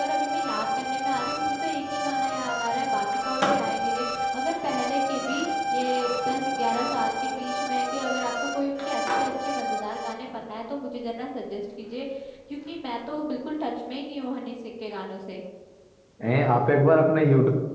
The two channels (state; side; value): identical; both; correlation 1.00